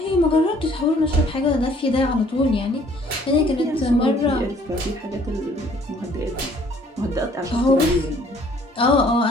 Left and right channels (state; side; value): normal; both; correlation 0.59